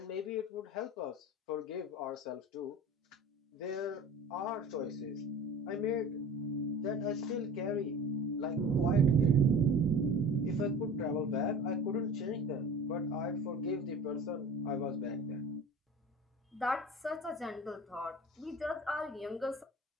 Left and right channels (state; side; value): normal; both; correlation 0.38